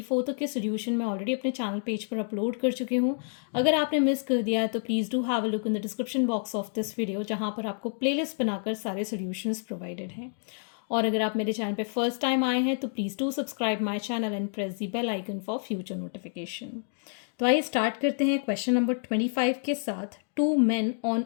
तक के सोल्यूशन मैं ऑलरेडी अपने चैनल पेज पर अपलोड कर चुकी हूँ। अगर आपने मिस कर दिया है तो please do have a look in the description box of this video, जहाँ पर आपको प्लेलिस्ट बनाकर सारे सोल्यूशंस प्रोवाइडेड हैं। और अगर आप मेरे चैनल पे फर्स्ट टाइम आए हैं तो please do subscribe my channel and press the bell icon for future notification. तो आइए स्टार्ट करते हैं क्वेश्चन नंबर 25 के साथ। Two men on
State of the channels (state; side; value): silent; right; 57 dB below the other